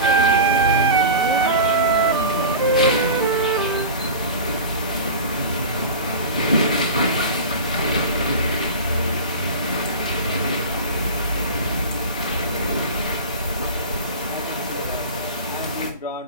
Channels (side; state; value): both; inverted; correlation -0.30